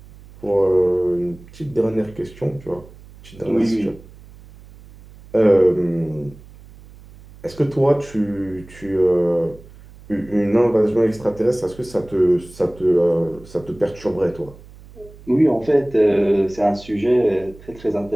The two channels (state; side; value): noise; right; hum, 21 dB below the sound